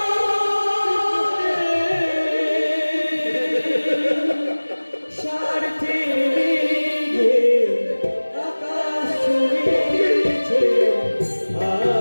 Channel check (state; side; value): inverted; both; correlation -1.00